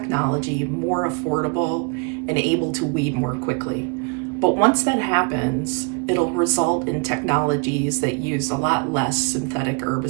more affordable and able to weed more quickly. But once that happens, it'll result in technologies that use a lot less synthetic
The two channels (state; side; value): quieter; left; 32.2 dB